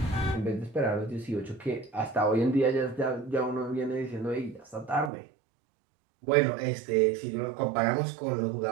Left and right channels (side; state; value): left; drops out; at 5.1 s